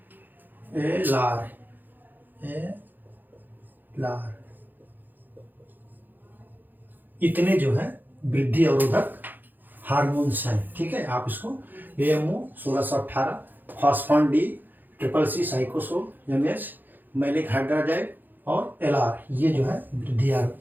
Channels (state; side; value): late; left; 0.088 ms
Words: एलार। एलार। इतने जो है वृद्धि अवरोधक हार्मोन्स हैं। ठीक है, आप इसको AMO 1618, phosphon D, triple C cycocel, MH malic hydrazide और एलआर, ये जो है वृद्धि